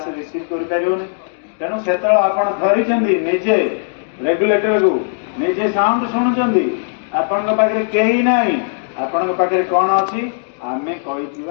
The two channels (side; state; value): right; silent; digital silence